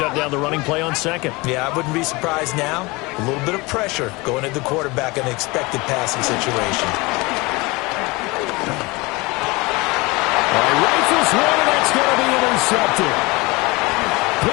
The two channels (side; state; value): right; quieter; 24.3 dB